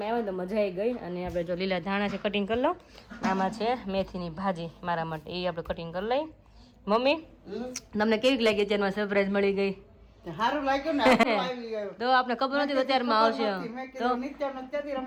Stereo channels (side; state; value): both; identical; correlation 1.00